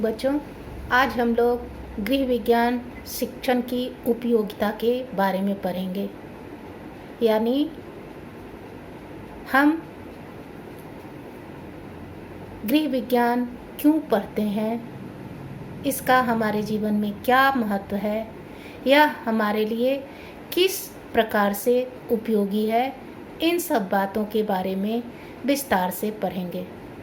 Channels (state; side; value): identical; both; correlation 1.00